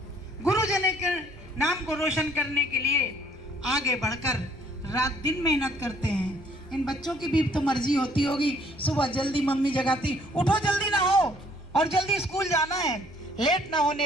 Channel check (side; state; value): both; normal; correlation 0.62